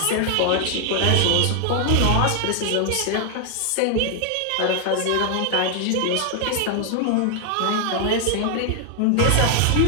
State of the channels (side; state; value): both; different; correlation 0.00